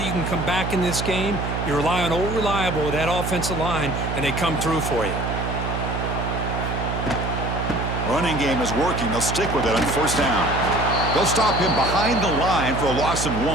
you can come back in this game. You rely on Old Reliable with that offensive line, and they come through for you. Running game is working. They'll stick with it on 1st down. They'll stop him behind the line for a loss of 1.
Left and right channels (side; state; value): right; noise; hum, 3 dB below the sound